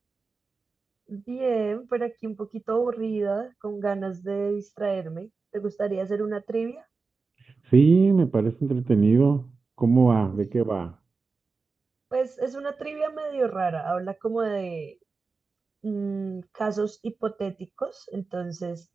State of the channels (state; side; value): quieter; left; 4.3 dB